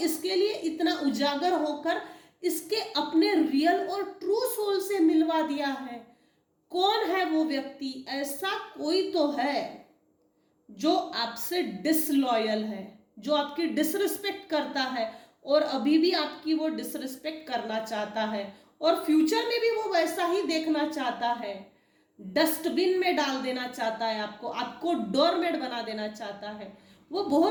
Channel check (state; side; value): identical; both; correlation 1.00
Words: लिए इतना उजागर होकर इसके अपने रियल और ट्रू सोल से मिलवा दिया है, कौन है वो व्यक्ति। ऐसा कोई तो है जो आपसे डिसलॉयल है, जो आपकी डिसरिस्पेक्ट करता है और अभी भी आपकी वो डिसरिस्पेक्ट करना चाहता है और फ्यूचर में भी वो वैसा ही देखना चाहता है। डस्टबिन में डाल देना चाहता है आपको, आपको डोरमेट बना देना चाहता है। वो